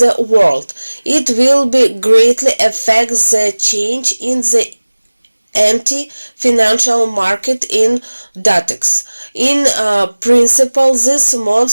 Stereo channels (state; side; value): inverted; both; correlation -1.00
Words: world. It will be greatly affect the change in the anti-financial market in Datex. In principle, this